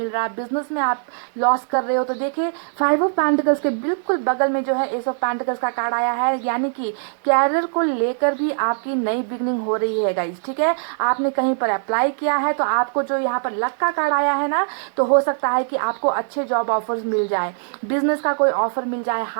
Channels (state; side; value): silent; left; digital silence